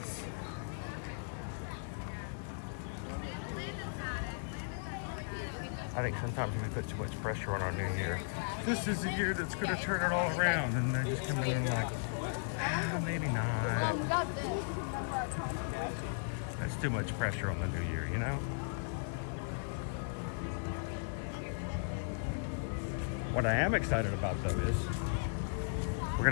I think sometimes we put too much pressure on our new year. This is the year that's going to turn it all around, and they just come in and like, maybe not. That's too much pressure on the new year, you know? What I am excited about though is we're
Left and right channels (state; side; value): silent; right; digital silence